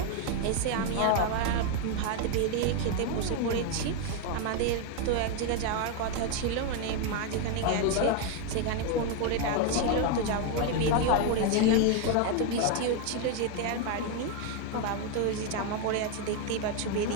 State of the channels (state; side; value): different; both; correlation 0.01